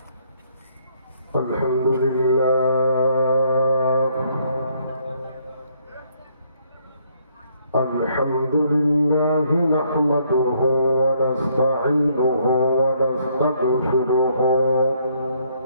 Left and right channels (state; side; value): inverted; both; correlation -0.69